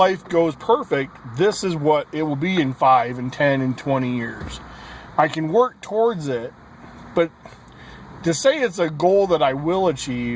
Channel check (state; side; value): identical; both; correlation 1.00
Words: goes perfect, this is what it will be in 5 and 10 and 20 years. I can work towards it. But to say it's a goal that I will